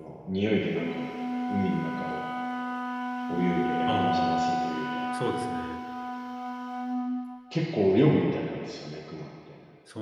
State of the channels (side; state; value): both; identical; correlation 1.00